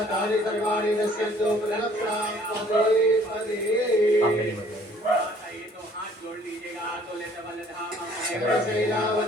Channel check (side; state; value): both; normal; correlation 0.58